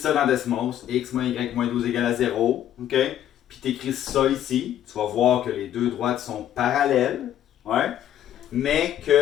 dans Desmos, x moins y moins 12 égale à 0, OK? Puis tu écris ça ici. Tu vas voir que les deux droites sont parallèles, ouais? Mais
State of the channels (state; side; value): quieter; right; 11.3 dB